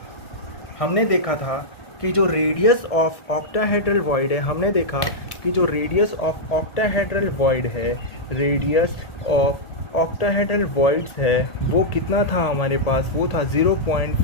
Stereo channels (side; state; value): right; late; 1.8 ms